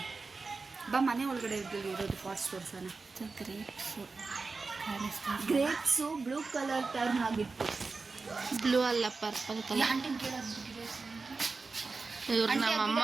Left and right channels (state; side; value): quieter; left; 4.1 dB